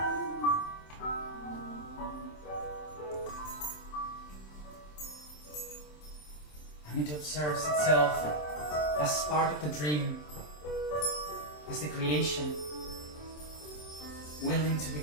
and it observes itself as part of the dream, as the creation, willing to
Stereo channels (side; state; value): right; late; 27 ms